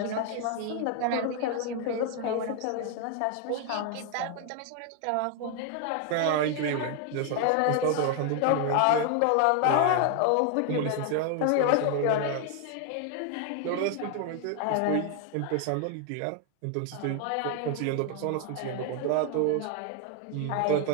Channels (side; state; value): both; different; correlation 0.00